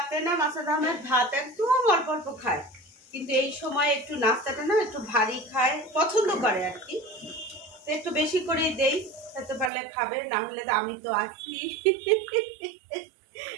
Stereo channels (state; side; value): drops out; left; at 9.7 s